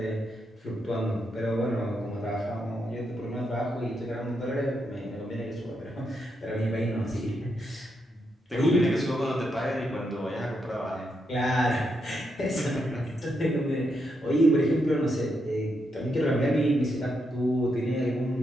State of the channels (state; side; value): normal; both; correlation 0.81